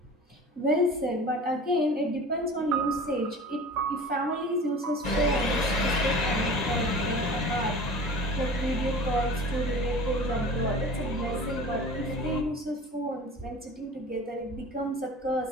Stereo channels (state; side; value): normal; both; correlation 0.39